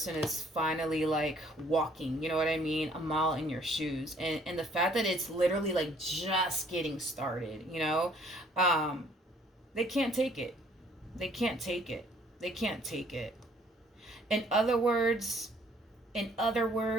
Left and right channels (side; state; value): both; normal; correlation 0.61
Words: is finally like walking, you know what I mean? A mile in your shoes. And the fact that it's literally like just getting started, they can't take it. They can't take it. They can't take it. In other words, the